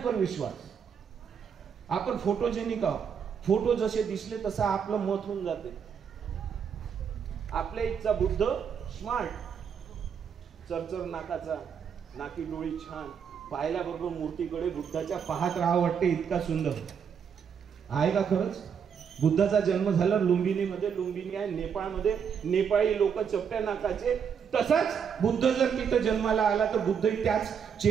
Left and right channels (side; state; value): left; quieter; 7.2 dB